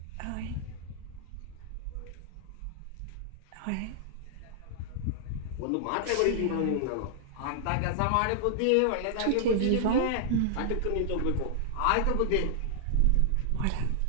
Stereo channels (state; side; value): different; both; correlation -0.01